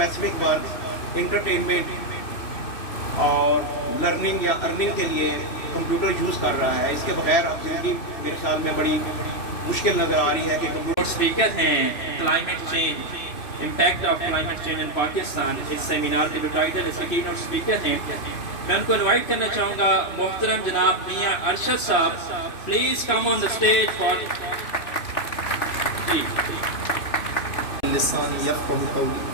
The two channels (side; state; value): right; late; 3.0 ms